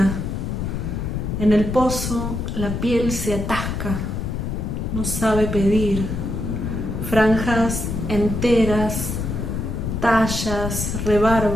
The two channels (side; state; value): left; noise; rumble, 3 dB below the sound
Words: En el pozo la piel se atasca, no sabe pedir. Franjas enteras, tallas,